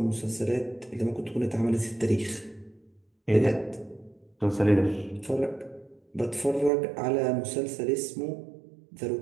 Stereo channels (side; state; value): left; drops out; at 6.7 s